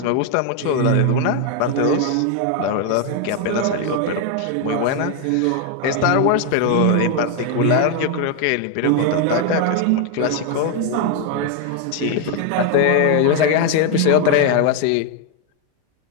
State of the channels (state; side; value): different; both; correlation 0.01